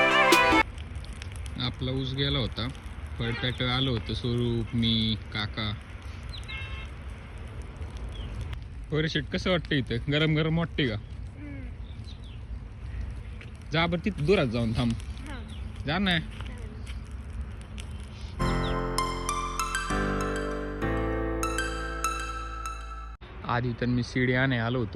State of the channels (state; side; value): identical; both; correlation 1.00